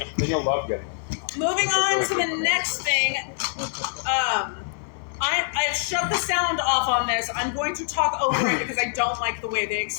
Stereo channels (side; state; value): right; silent; 62 dB below the other